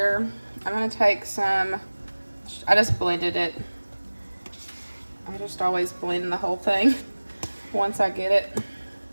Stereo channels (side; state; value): both; inverted; correlation -1.00